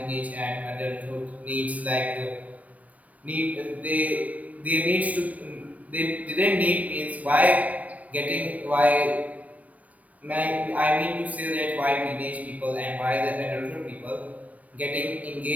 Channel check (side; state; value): left; late; 0.069 ms